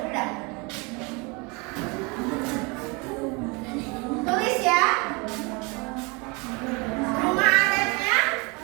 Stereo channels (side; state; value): left; quieter; 29.0 dB